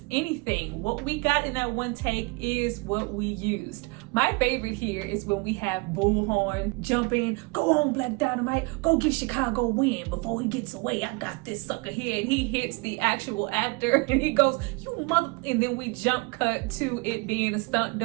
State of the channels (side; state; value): left; quieter; 27.8 dB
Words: anything. What we got in that one take is what we used. My favorite here is when we have Bullhorn jump in, go on Black Dynamite, go give Chicago a win before he gets away. I got this sucker here. And he hits the actual actor and he goes, you mother, and then we jump cut to it being a stunt